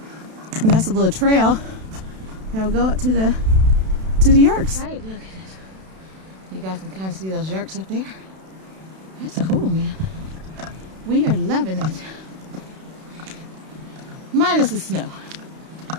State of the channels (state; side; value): late; left; 32 ms